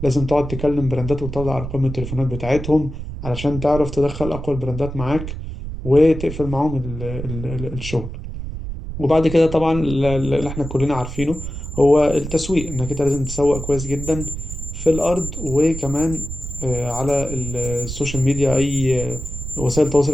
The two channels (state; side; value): noise; right; rumble, 8 dB below the sound